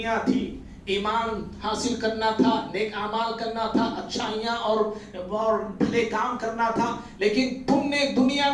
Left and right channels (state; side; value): identical; both; correlation 1.00